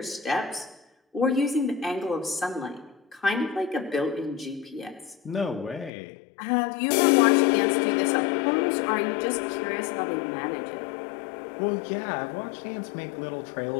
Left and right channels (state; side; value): drops out; right; at 5.9 s